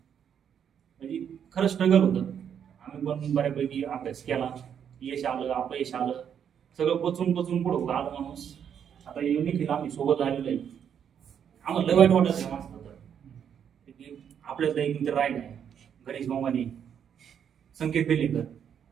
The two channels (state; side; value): quieter; left; 8.4 dB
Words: म्हणजे खरं स्ट्रगल होतं. आम्ही पण बऱ्यापैकी अभ्यास केला, यश आलं अपयश आलं, सगळं पचून पुढं आलं माणूस. आता निखिल आम्ही सोबत आलेलो आहे. आम्हाला लय वाईट वाटत आहे माणसाला तर आपल्याला एक मित्र राहिला आहे, गणेश मामाने, संकेत बेलेकर,